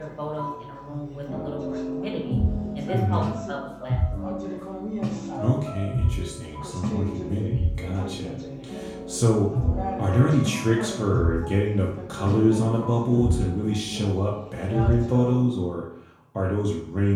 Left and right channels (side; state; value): both; identical; correlation 1.00